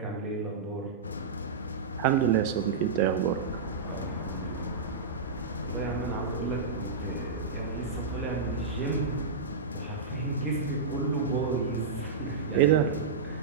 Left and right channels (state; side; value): quieter; left; 4.8 dB